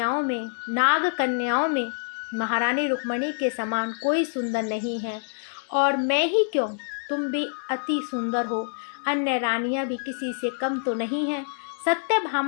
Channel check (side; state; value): right; silent; 57 dB below the other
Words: में, नाग कन्याओं में महारानी रुक्मणी के समान कोई सुंदर नहीं है। और मैं ही क्यों, तुम भी अति सुंदर हो। अन्य रानियां भी किसी से कम तो नहीं हैं।